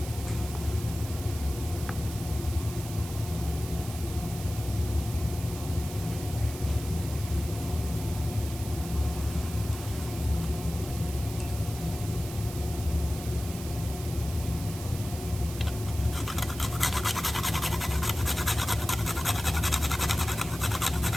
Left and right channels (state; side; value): noise; right; hiss, 12 dB below the sound